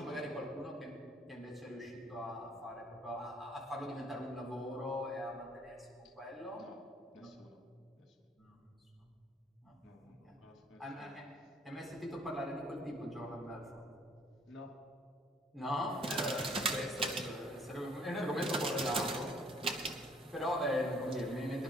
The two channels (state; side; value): normal; both; correlation 0.60